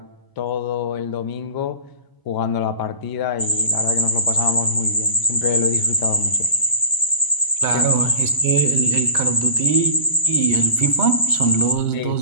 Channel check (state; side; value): late; right; 1.0 ms